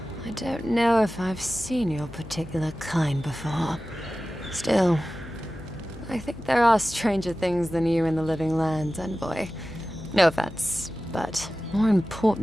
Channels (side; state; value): left; noise; hum, 15 dB below the sound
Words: I don't know if I've seen your particular kind before. Still, I think there are stranger things than you in the living lands, envoy. No offense, but more